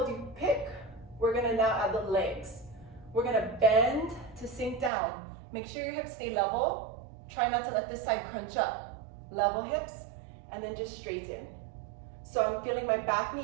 you pick, we're gonna now add the legs. We're gonna bend to sink down. Make sure your hips stay level. Try not to let this side crunch up. Level hips, and then just straighten. So I'm feeling my back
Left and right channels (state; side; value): drops out; left; at 4.9 s